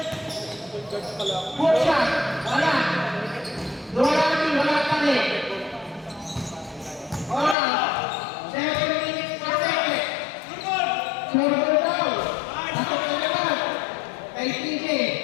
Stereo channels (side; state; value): right; drops out; at 7.6 s